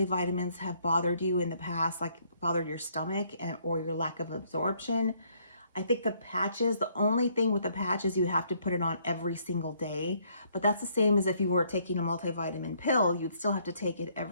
have bothered you in the past, like bothered your stomach or your lack of absorption, I think the patches, the only thing with the patches, you have to put it on every single day. But that's the same as if you were taking a multivitamin pill, you'd still have to take it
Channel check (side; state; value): both; inverted; correlation -0.67